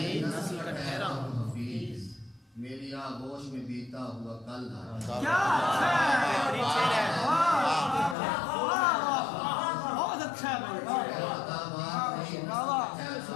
نسل کا ٹھہرا ہوں حفیظ، میری آغوش میں بیتا ہوا کل آ جائے،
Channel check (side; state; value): right; drops out; at 8.2 s